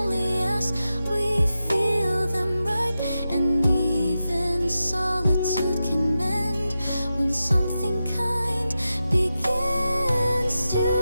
ask we feel them right. And even solitude can mend when something kind begins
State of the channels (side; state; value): both; inverted; correlation -0.91